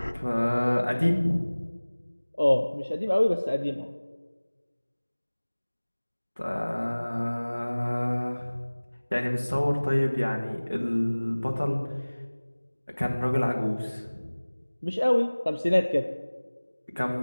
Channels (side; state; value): both; inverted; correlation -1.00